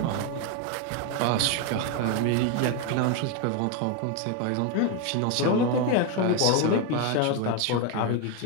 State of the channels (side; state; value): both; different; correlation 0.02